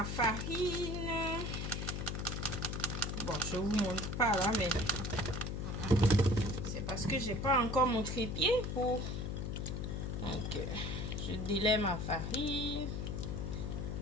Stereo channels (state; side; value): noise; left; hum, 3 dB below the sound